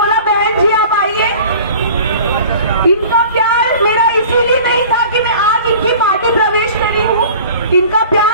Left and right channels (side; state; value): both; inverted; correlation -0.44